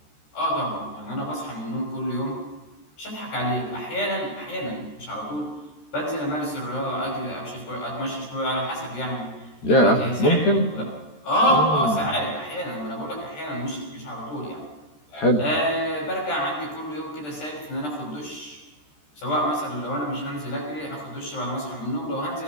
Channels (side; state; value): right; late; 13 ms